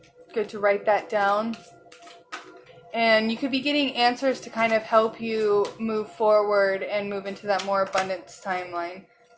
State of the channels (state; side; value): identical; both; correlation 1.00